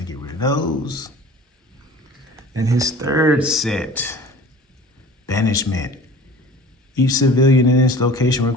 to get rid of those. And his third set, Banishment. Each civilian in this location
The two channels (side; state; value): both; normal; correlation 0.43